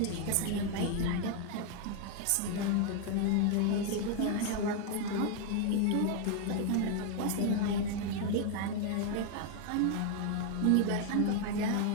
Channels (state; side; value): different; both; correlation 0.00